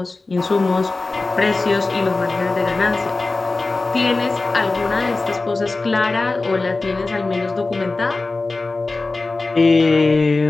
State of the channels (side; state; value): right; quieter; 3.4 dB